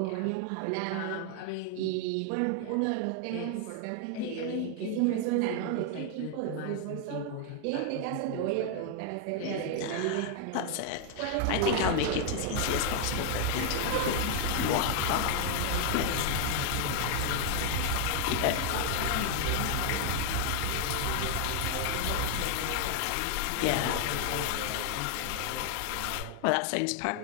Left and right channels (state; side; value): different; both; correlation 0.00